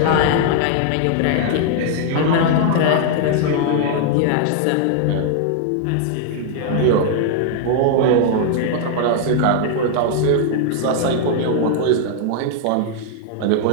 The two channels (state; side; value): different; both; correlation -0.01